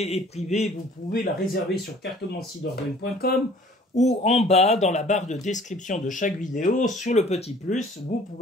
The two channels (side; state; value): both; normal; correlation 0.52